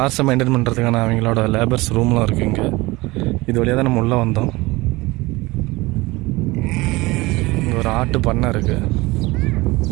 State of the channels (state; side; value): quieter; left; 21.6 dB